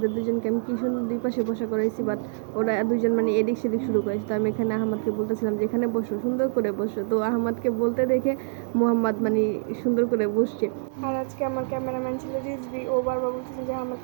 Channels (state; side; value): silent; left; 57 dB below the other